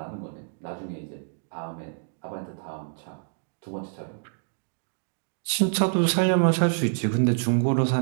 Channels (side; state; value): left; silent; digital silence